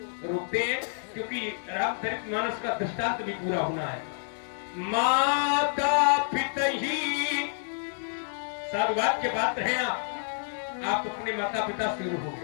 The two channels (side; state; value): right; silent; digital silence